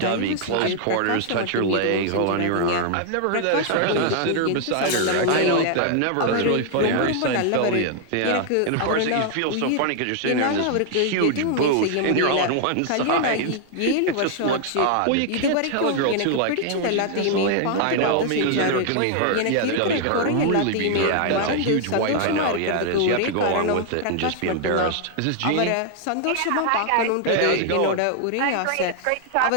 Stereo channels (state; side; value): different; both; correlation 0.00